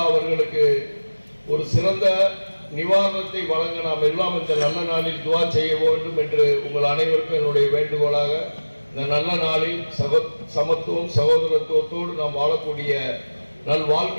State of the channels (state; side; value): inverted; both; correlation -1.00